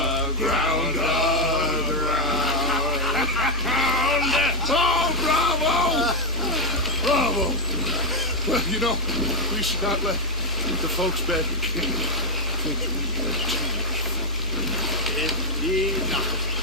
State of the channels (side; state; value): both; normal; correlation 0.00